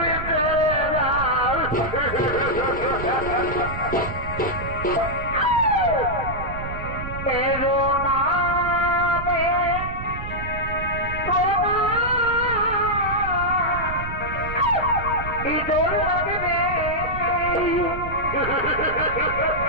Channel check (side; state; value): right; noise; rumble, 8 dB below the sound